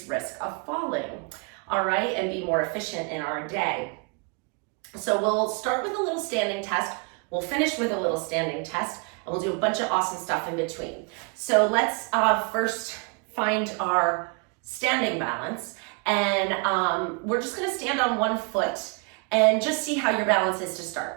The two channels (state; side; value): quieter; left; 34.9 dB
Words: risk of falling. All right, and be more efficient in our day. So we'll start with a little standing test, we'll finish with a little standing test, and we'll do a bunch of awesome stuff in between. So let's first find our standing balance, and we're just gonna stand on one foot and just see how your balance is to